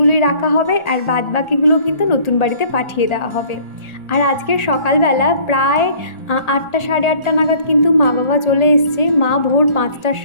রাখা হবে, আর বাদ বাকিগুলো কিন্তু নতুন বাড়িতে পাঠিয়ে দেওয়া হবে। আর আজকের সকালবেলা প্রায় 8টা সাড়ে 8টা নাগাদ কিন্তু মা বাবা চলে এসছে। মা ভোর 5টার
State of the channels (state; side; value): late; right; 1.8 ms